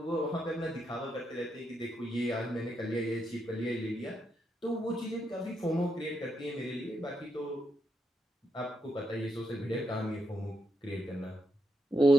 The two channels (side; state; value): both; normal; correlation 0.81